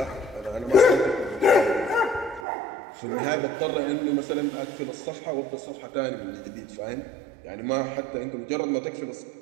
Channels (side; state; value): left; drops out; at 2.5 s